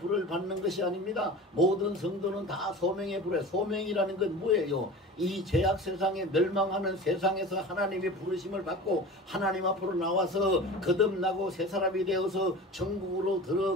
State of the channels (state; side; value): normal; both; correlation 0.35